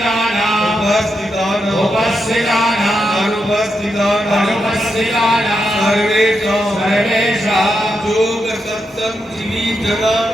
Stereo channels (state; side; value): normal; both; correlation 0.84